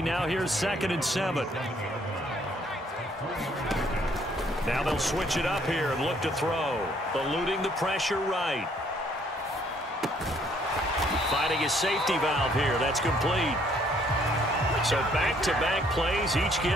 now here's 2nd and 7. Now they'll switch it up here and look to throw. Eluding the pressure right. Finding his safety valve here. That's complete. So back-to-back plays, each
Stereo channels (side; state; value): both; normal; correlation 0.65